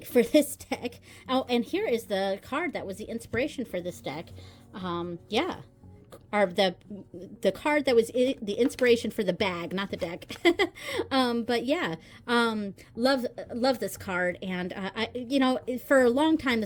for this deck. Oh, and here is the card that was the inspiration for this deck. Yeah. Or the card that was the inspiration for the bag, not the deck. But yeah, love this card, and for a long time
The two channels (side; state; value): both; identical; correlation 1.00